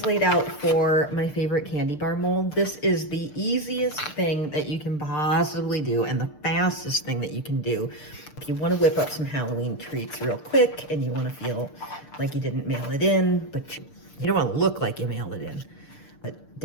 laid out for my favorite candy bar mold. This is the easiest thing that you can possibly do and the fastest thing that you can do. If you want to whip up some Halloween treats real quick and you want to feel like you didn't mail it in, but you don't want to look like you mailed it in. But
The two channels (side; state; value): right; late; 6.7 ms